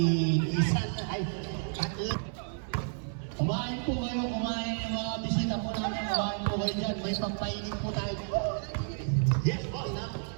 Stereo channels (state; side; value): silent; left; 57 dB below the other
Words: Isa na. Ay, tatlo. Kumain po kayo, kumain yung mga bisita po namin, kumain po kayo dyan. May pampainin po tayo. Yes, boss, na.